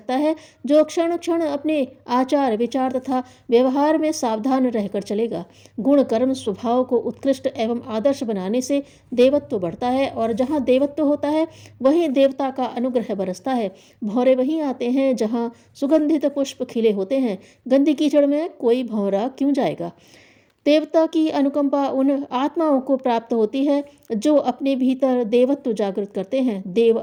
है जो क्षण क्षण अपने आचार, विचार तथा व्यवहार में सावधान रहकर चलेगा। गुण, कर्म, स्वभाव को उत्कृष्ट एवं आदर्श बनाने से देवत्व बढ़ता है, और जहाँ देवत्व होता है वहीं देवता का अनुग्रह बरसता है। भौरे वहीं आते हैं जहाँ सुगंधित पुष्प खिले होते हैं। गंदी कीचड़ में कोई भौरा क्यों जाएगा? देवता की अनुकंपा उन आत्माओं को प्राप्त होती है जो अपने भीतर देवत्व जागृत करते हैं। देव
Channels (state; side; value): identical; both; correlation 1.00